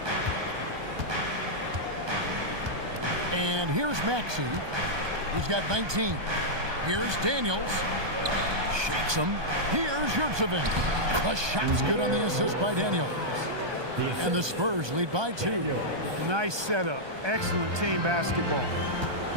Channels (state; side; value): late; left; 1.2 ms